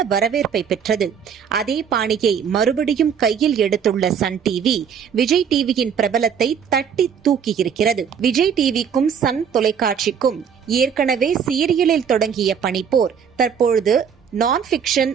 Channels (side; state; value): left; quieter; 7.4 dB